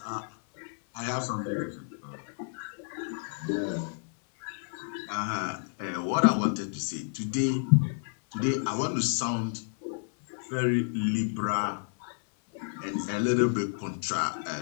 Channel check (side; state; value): right; silent; 58 dB below the other